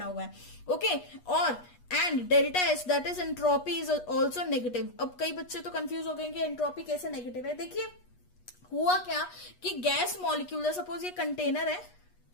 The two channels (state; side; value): late; right; 8.3 ms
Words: हुआ है। ओके, और and delta H that is entropy is also negative. अब कई बच्चे तो कंफ्यूज हो गए कि एंट्रोपी कैसे नेगेटिव है। देखिए, हुआ क्या कि गैस मॉलिक्यूल, सपोज ये कंटेनर है,